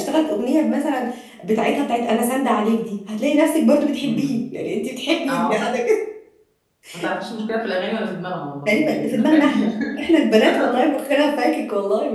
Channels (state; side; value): identical; both; correlation 1.00